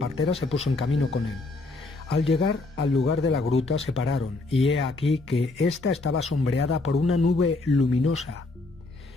se puso en camino con él. Al llegar al lugar de la gruta se pararon, y he aquí que ésta estaba sombreada por una nube luminosa.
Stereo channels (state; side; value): quieter; right; 3.3 dB